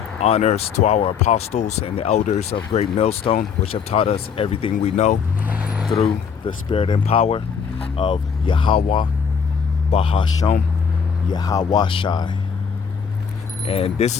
honors to our apostles and the elders of Great Millstone, which have taught us everything we know through the spirit and power of Yahweh, Bahasham, Yahweh Shai. And this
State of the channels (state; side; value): quieter; right; 6.5 dB